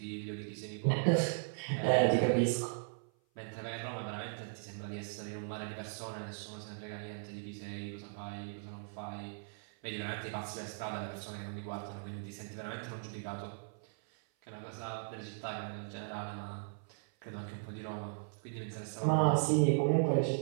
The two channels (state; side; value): silent; left; 53 dB below the other